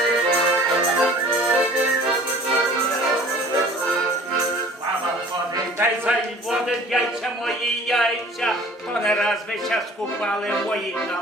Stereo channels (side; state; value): both; normal; correlation 0.48